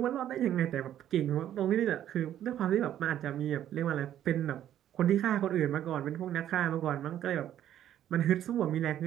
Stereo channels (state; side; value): quieter; left; 11.3 dB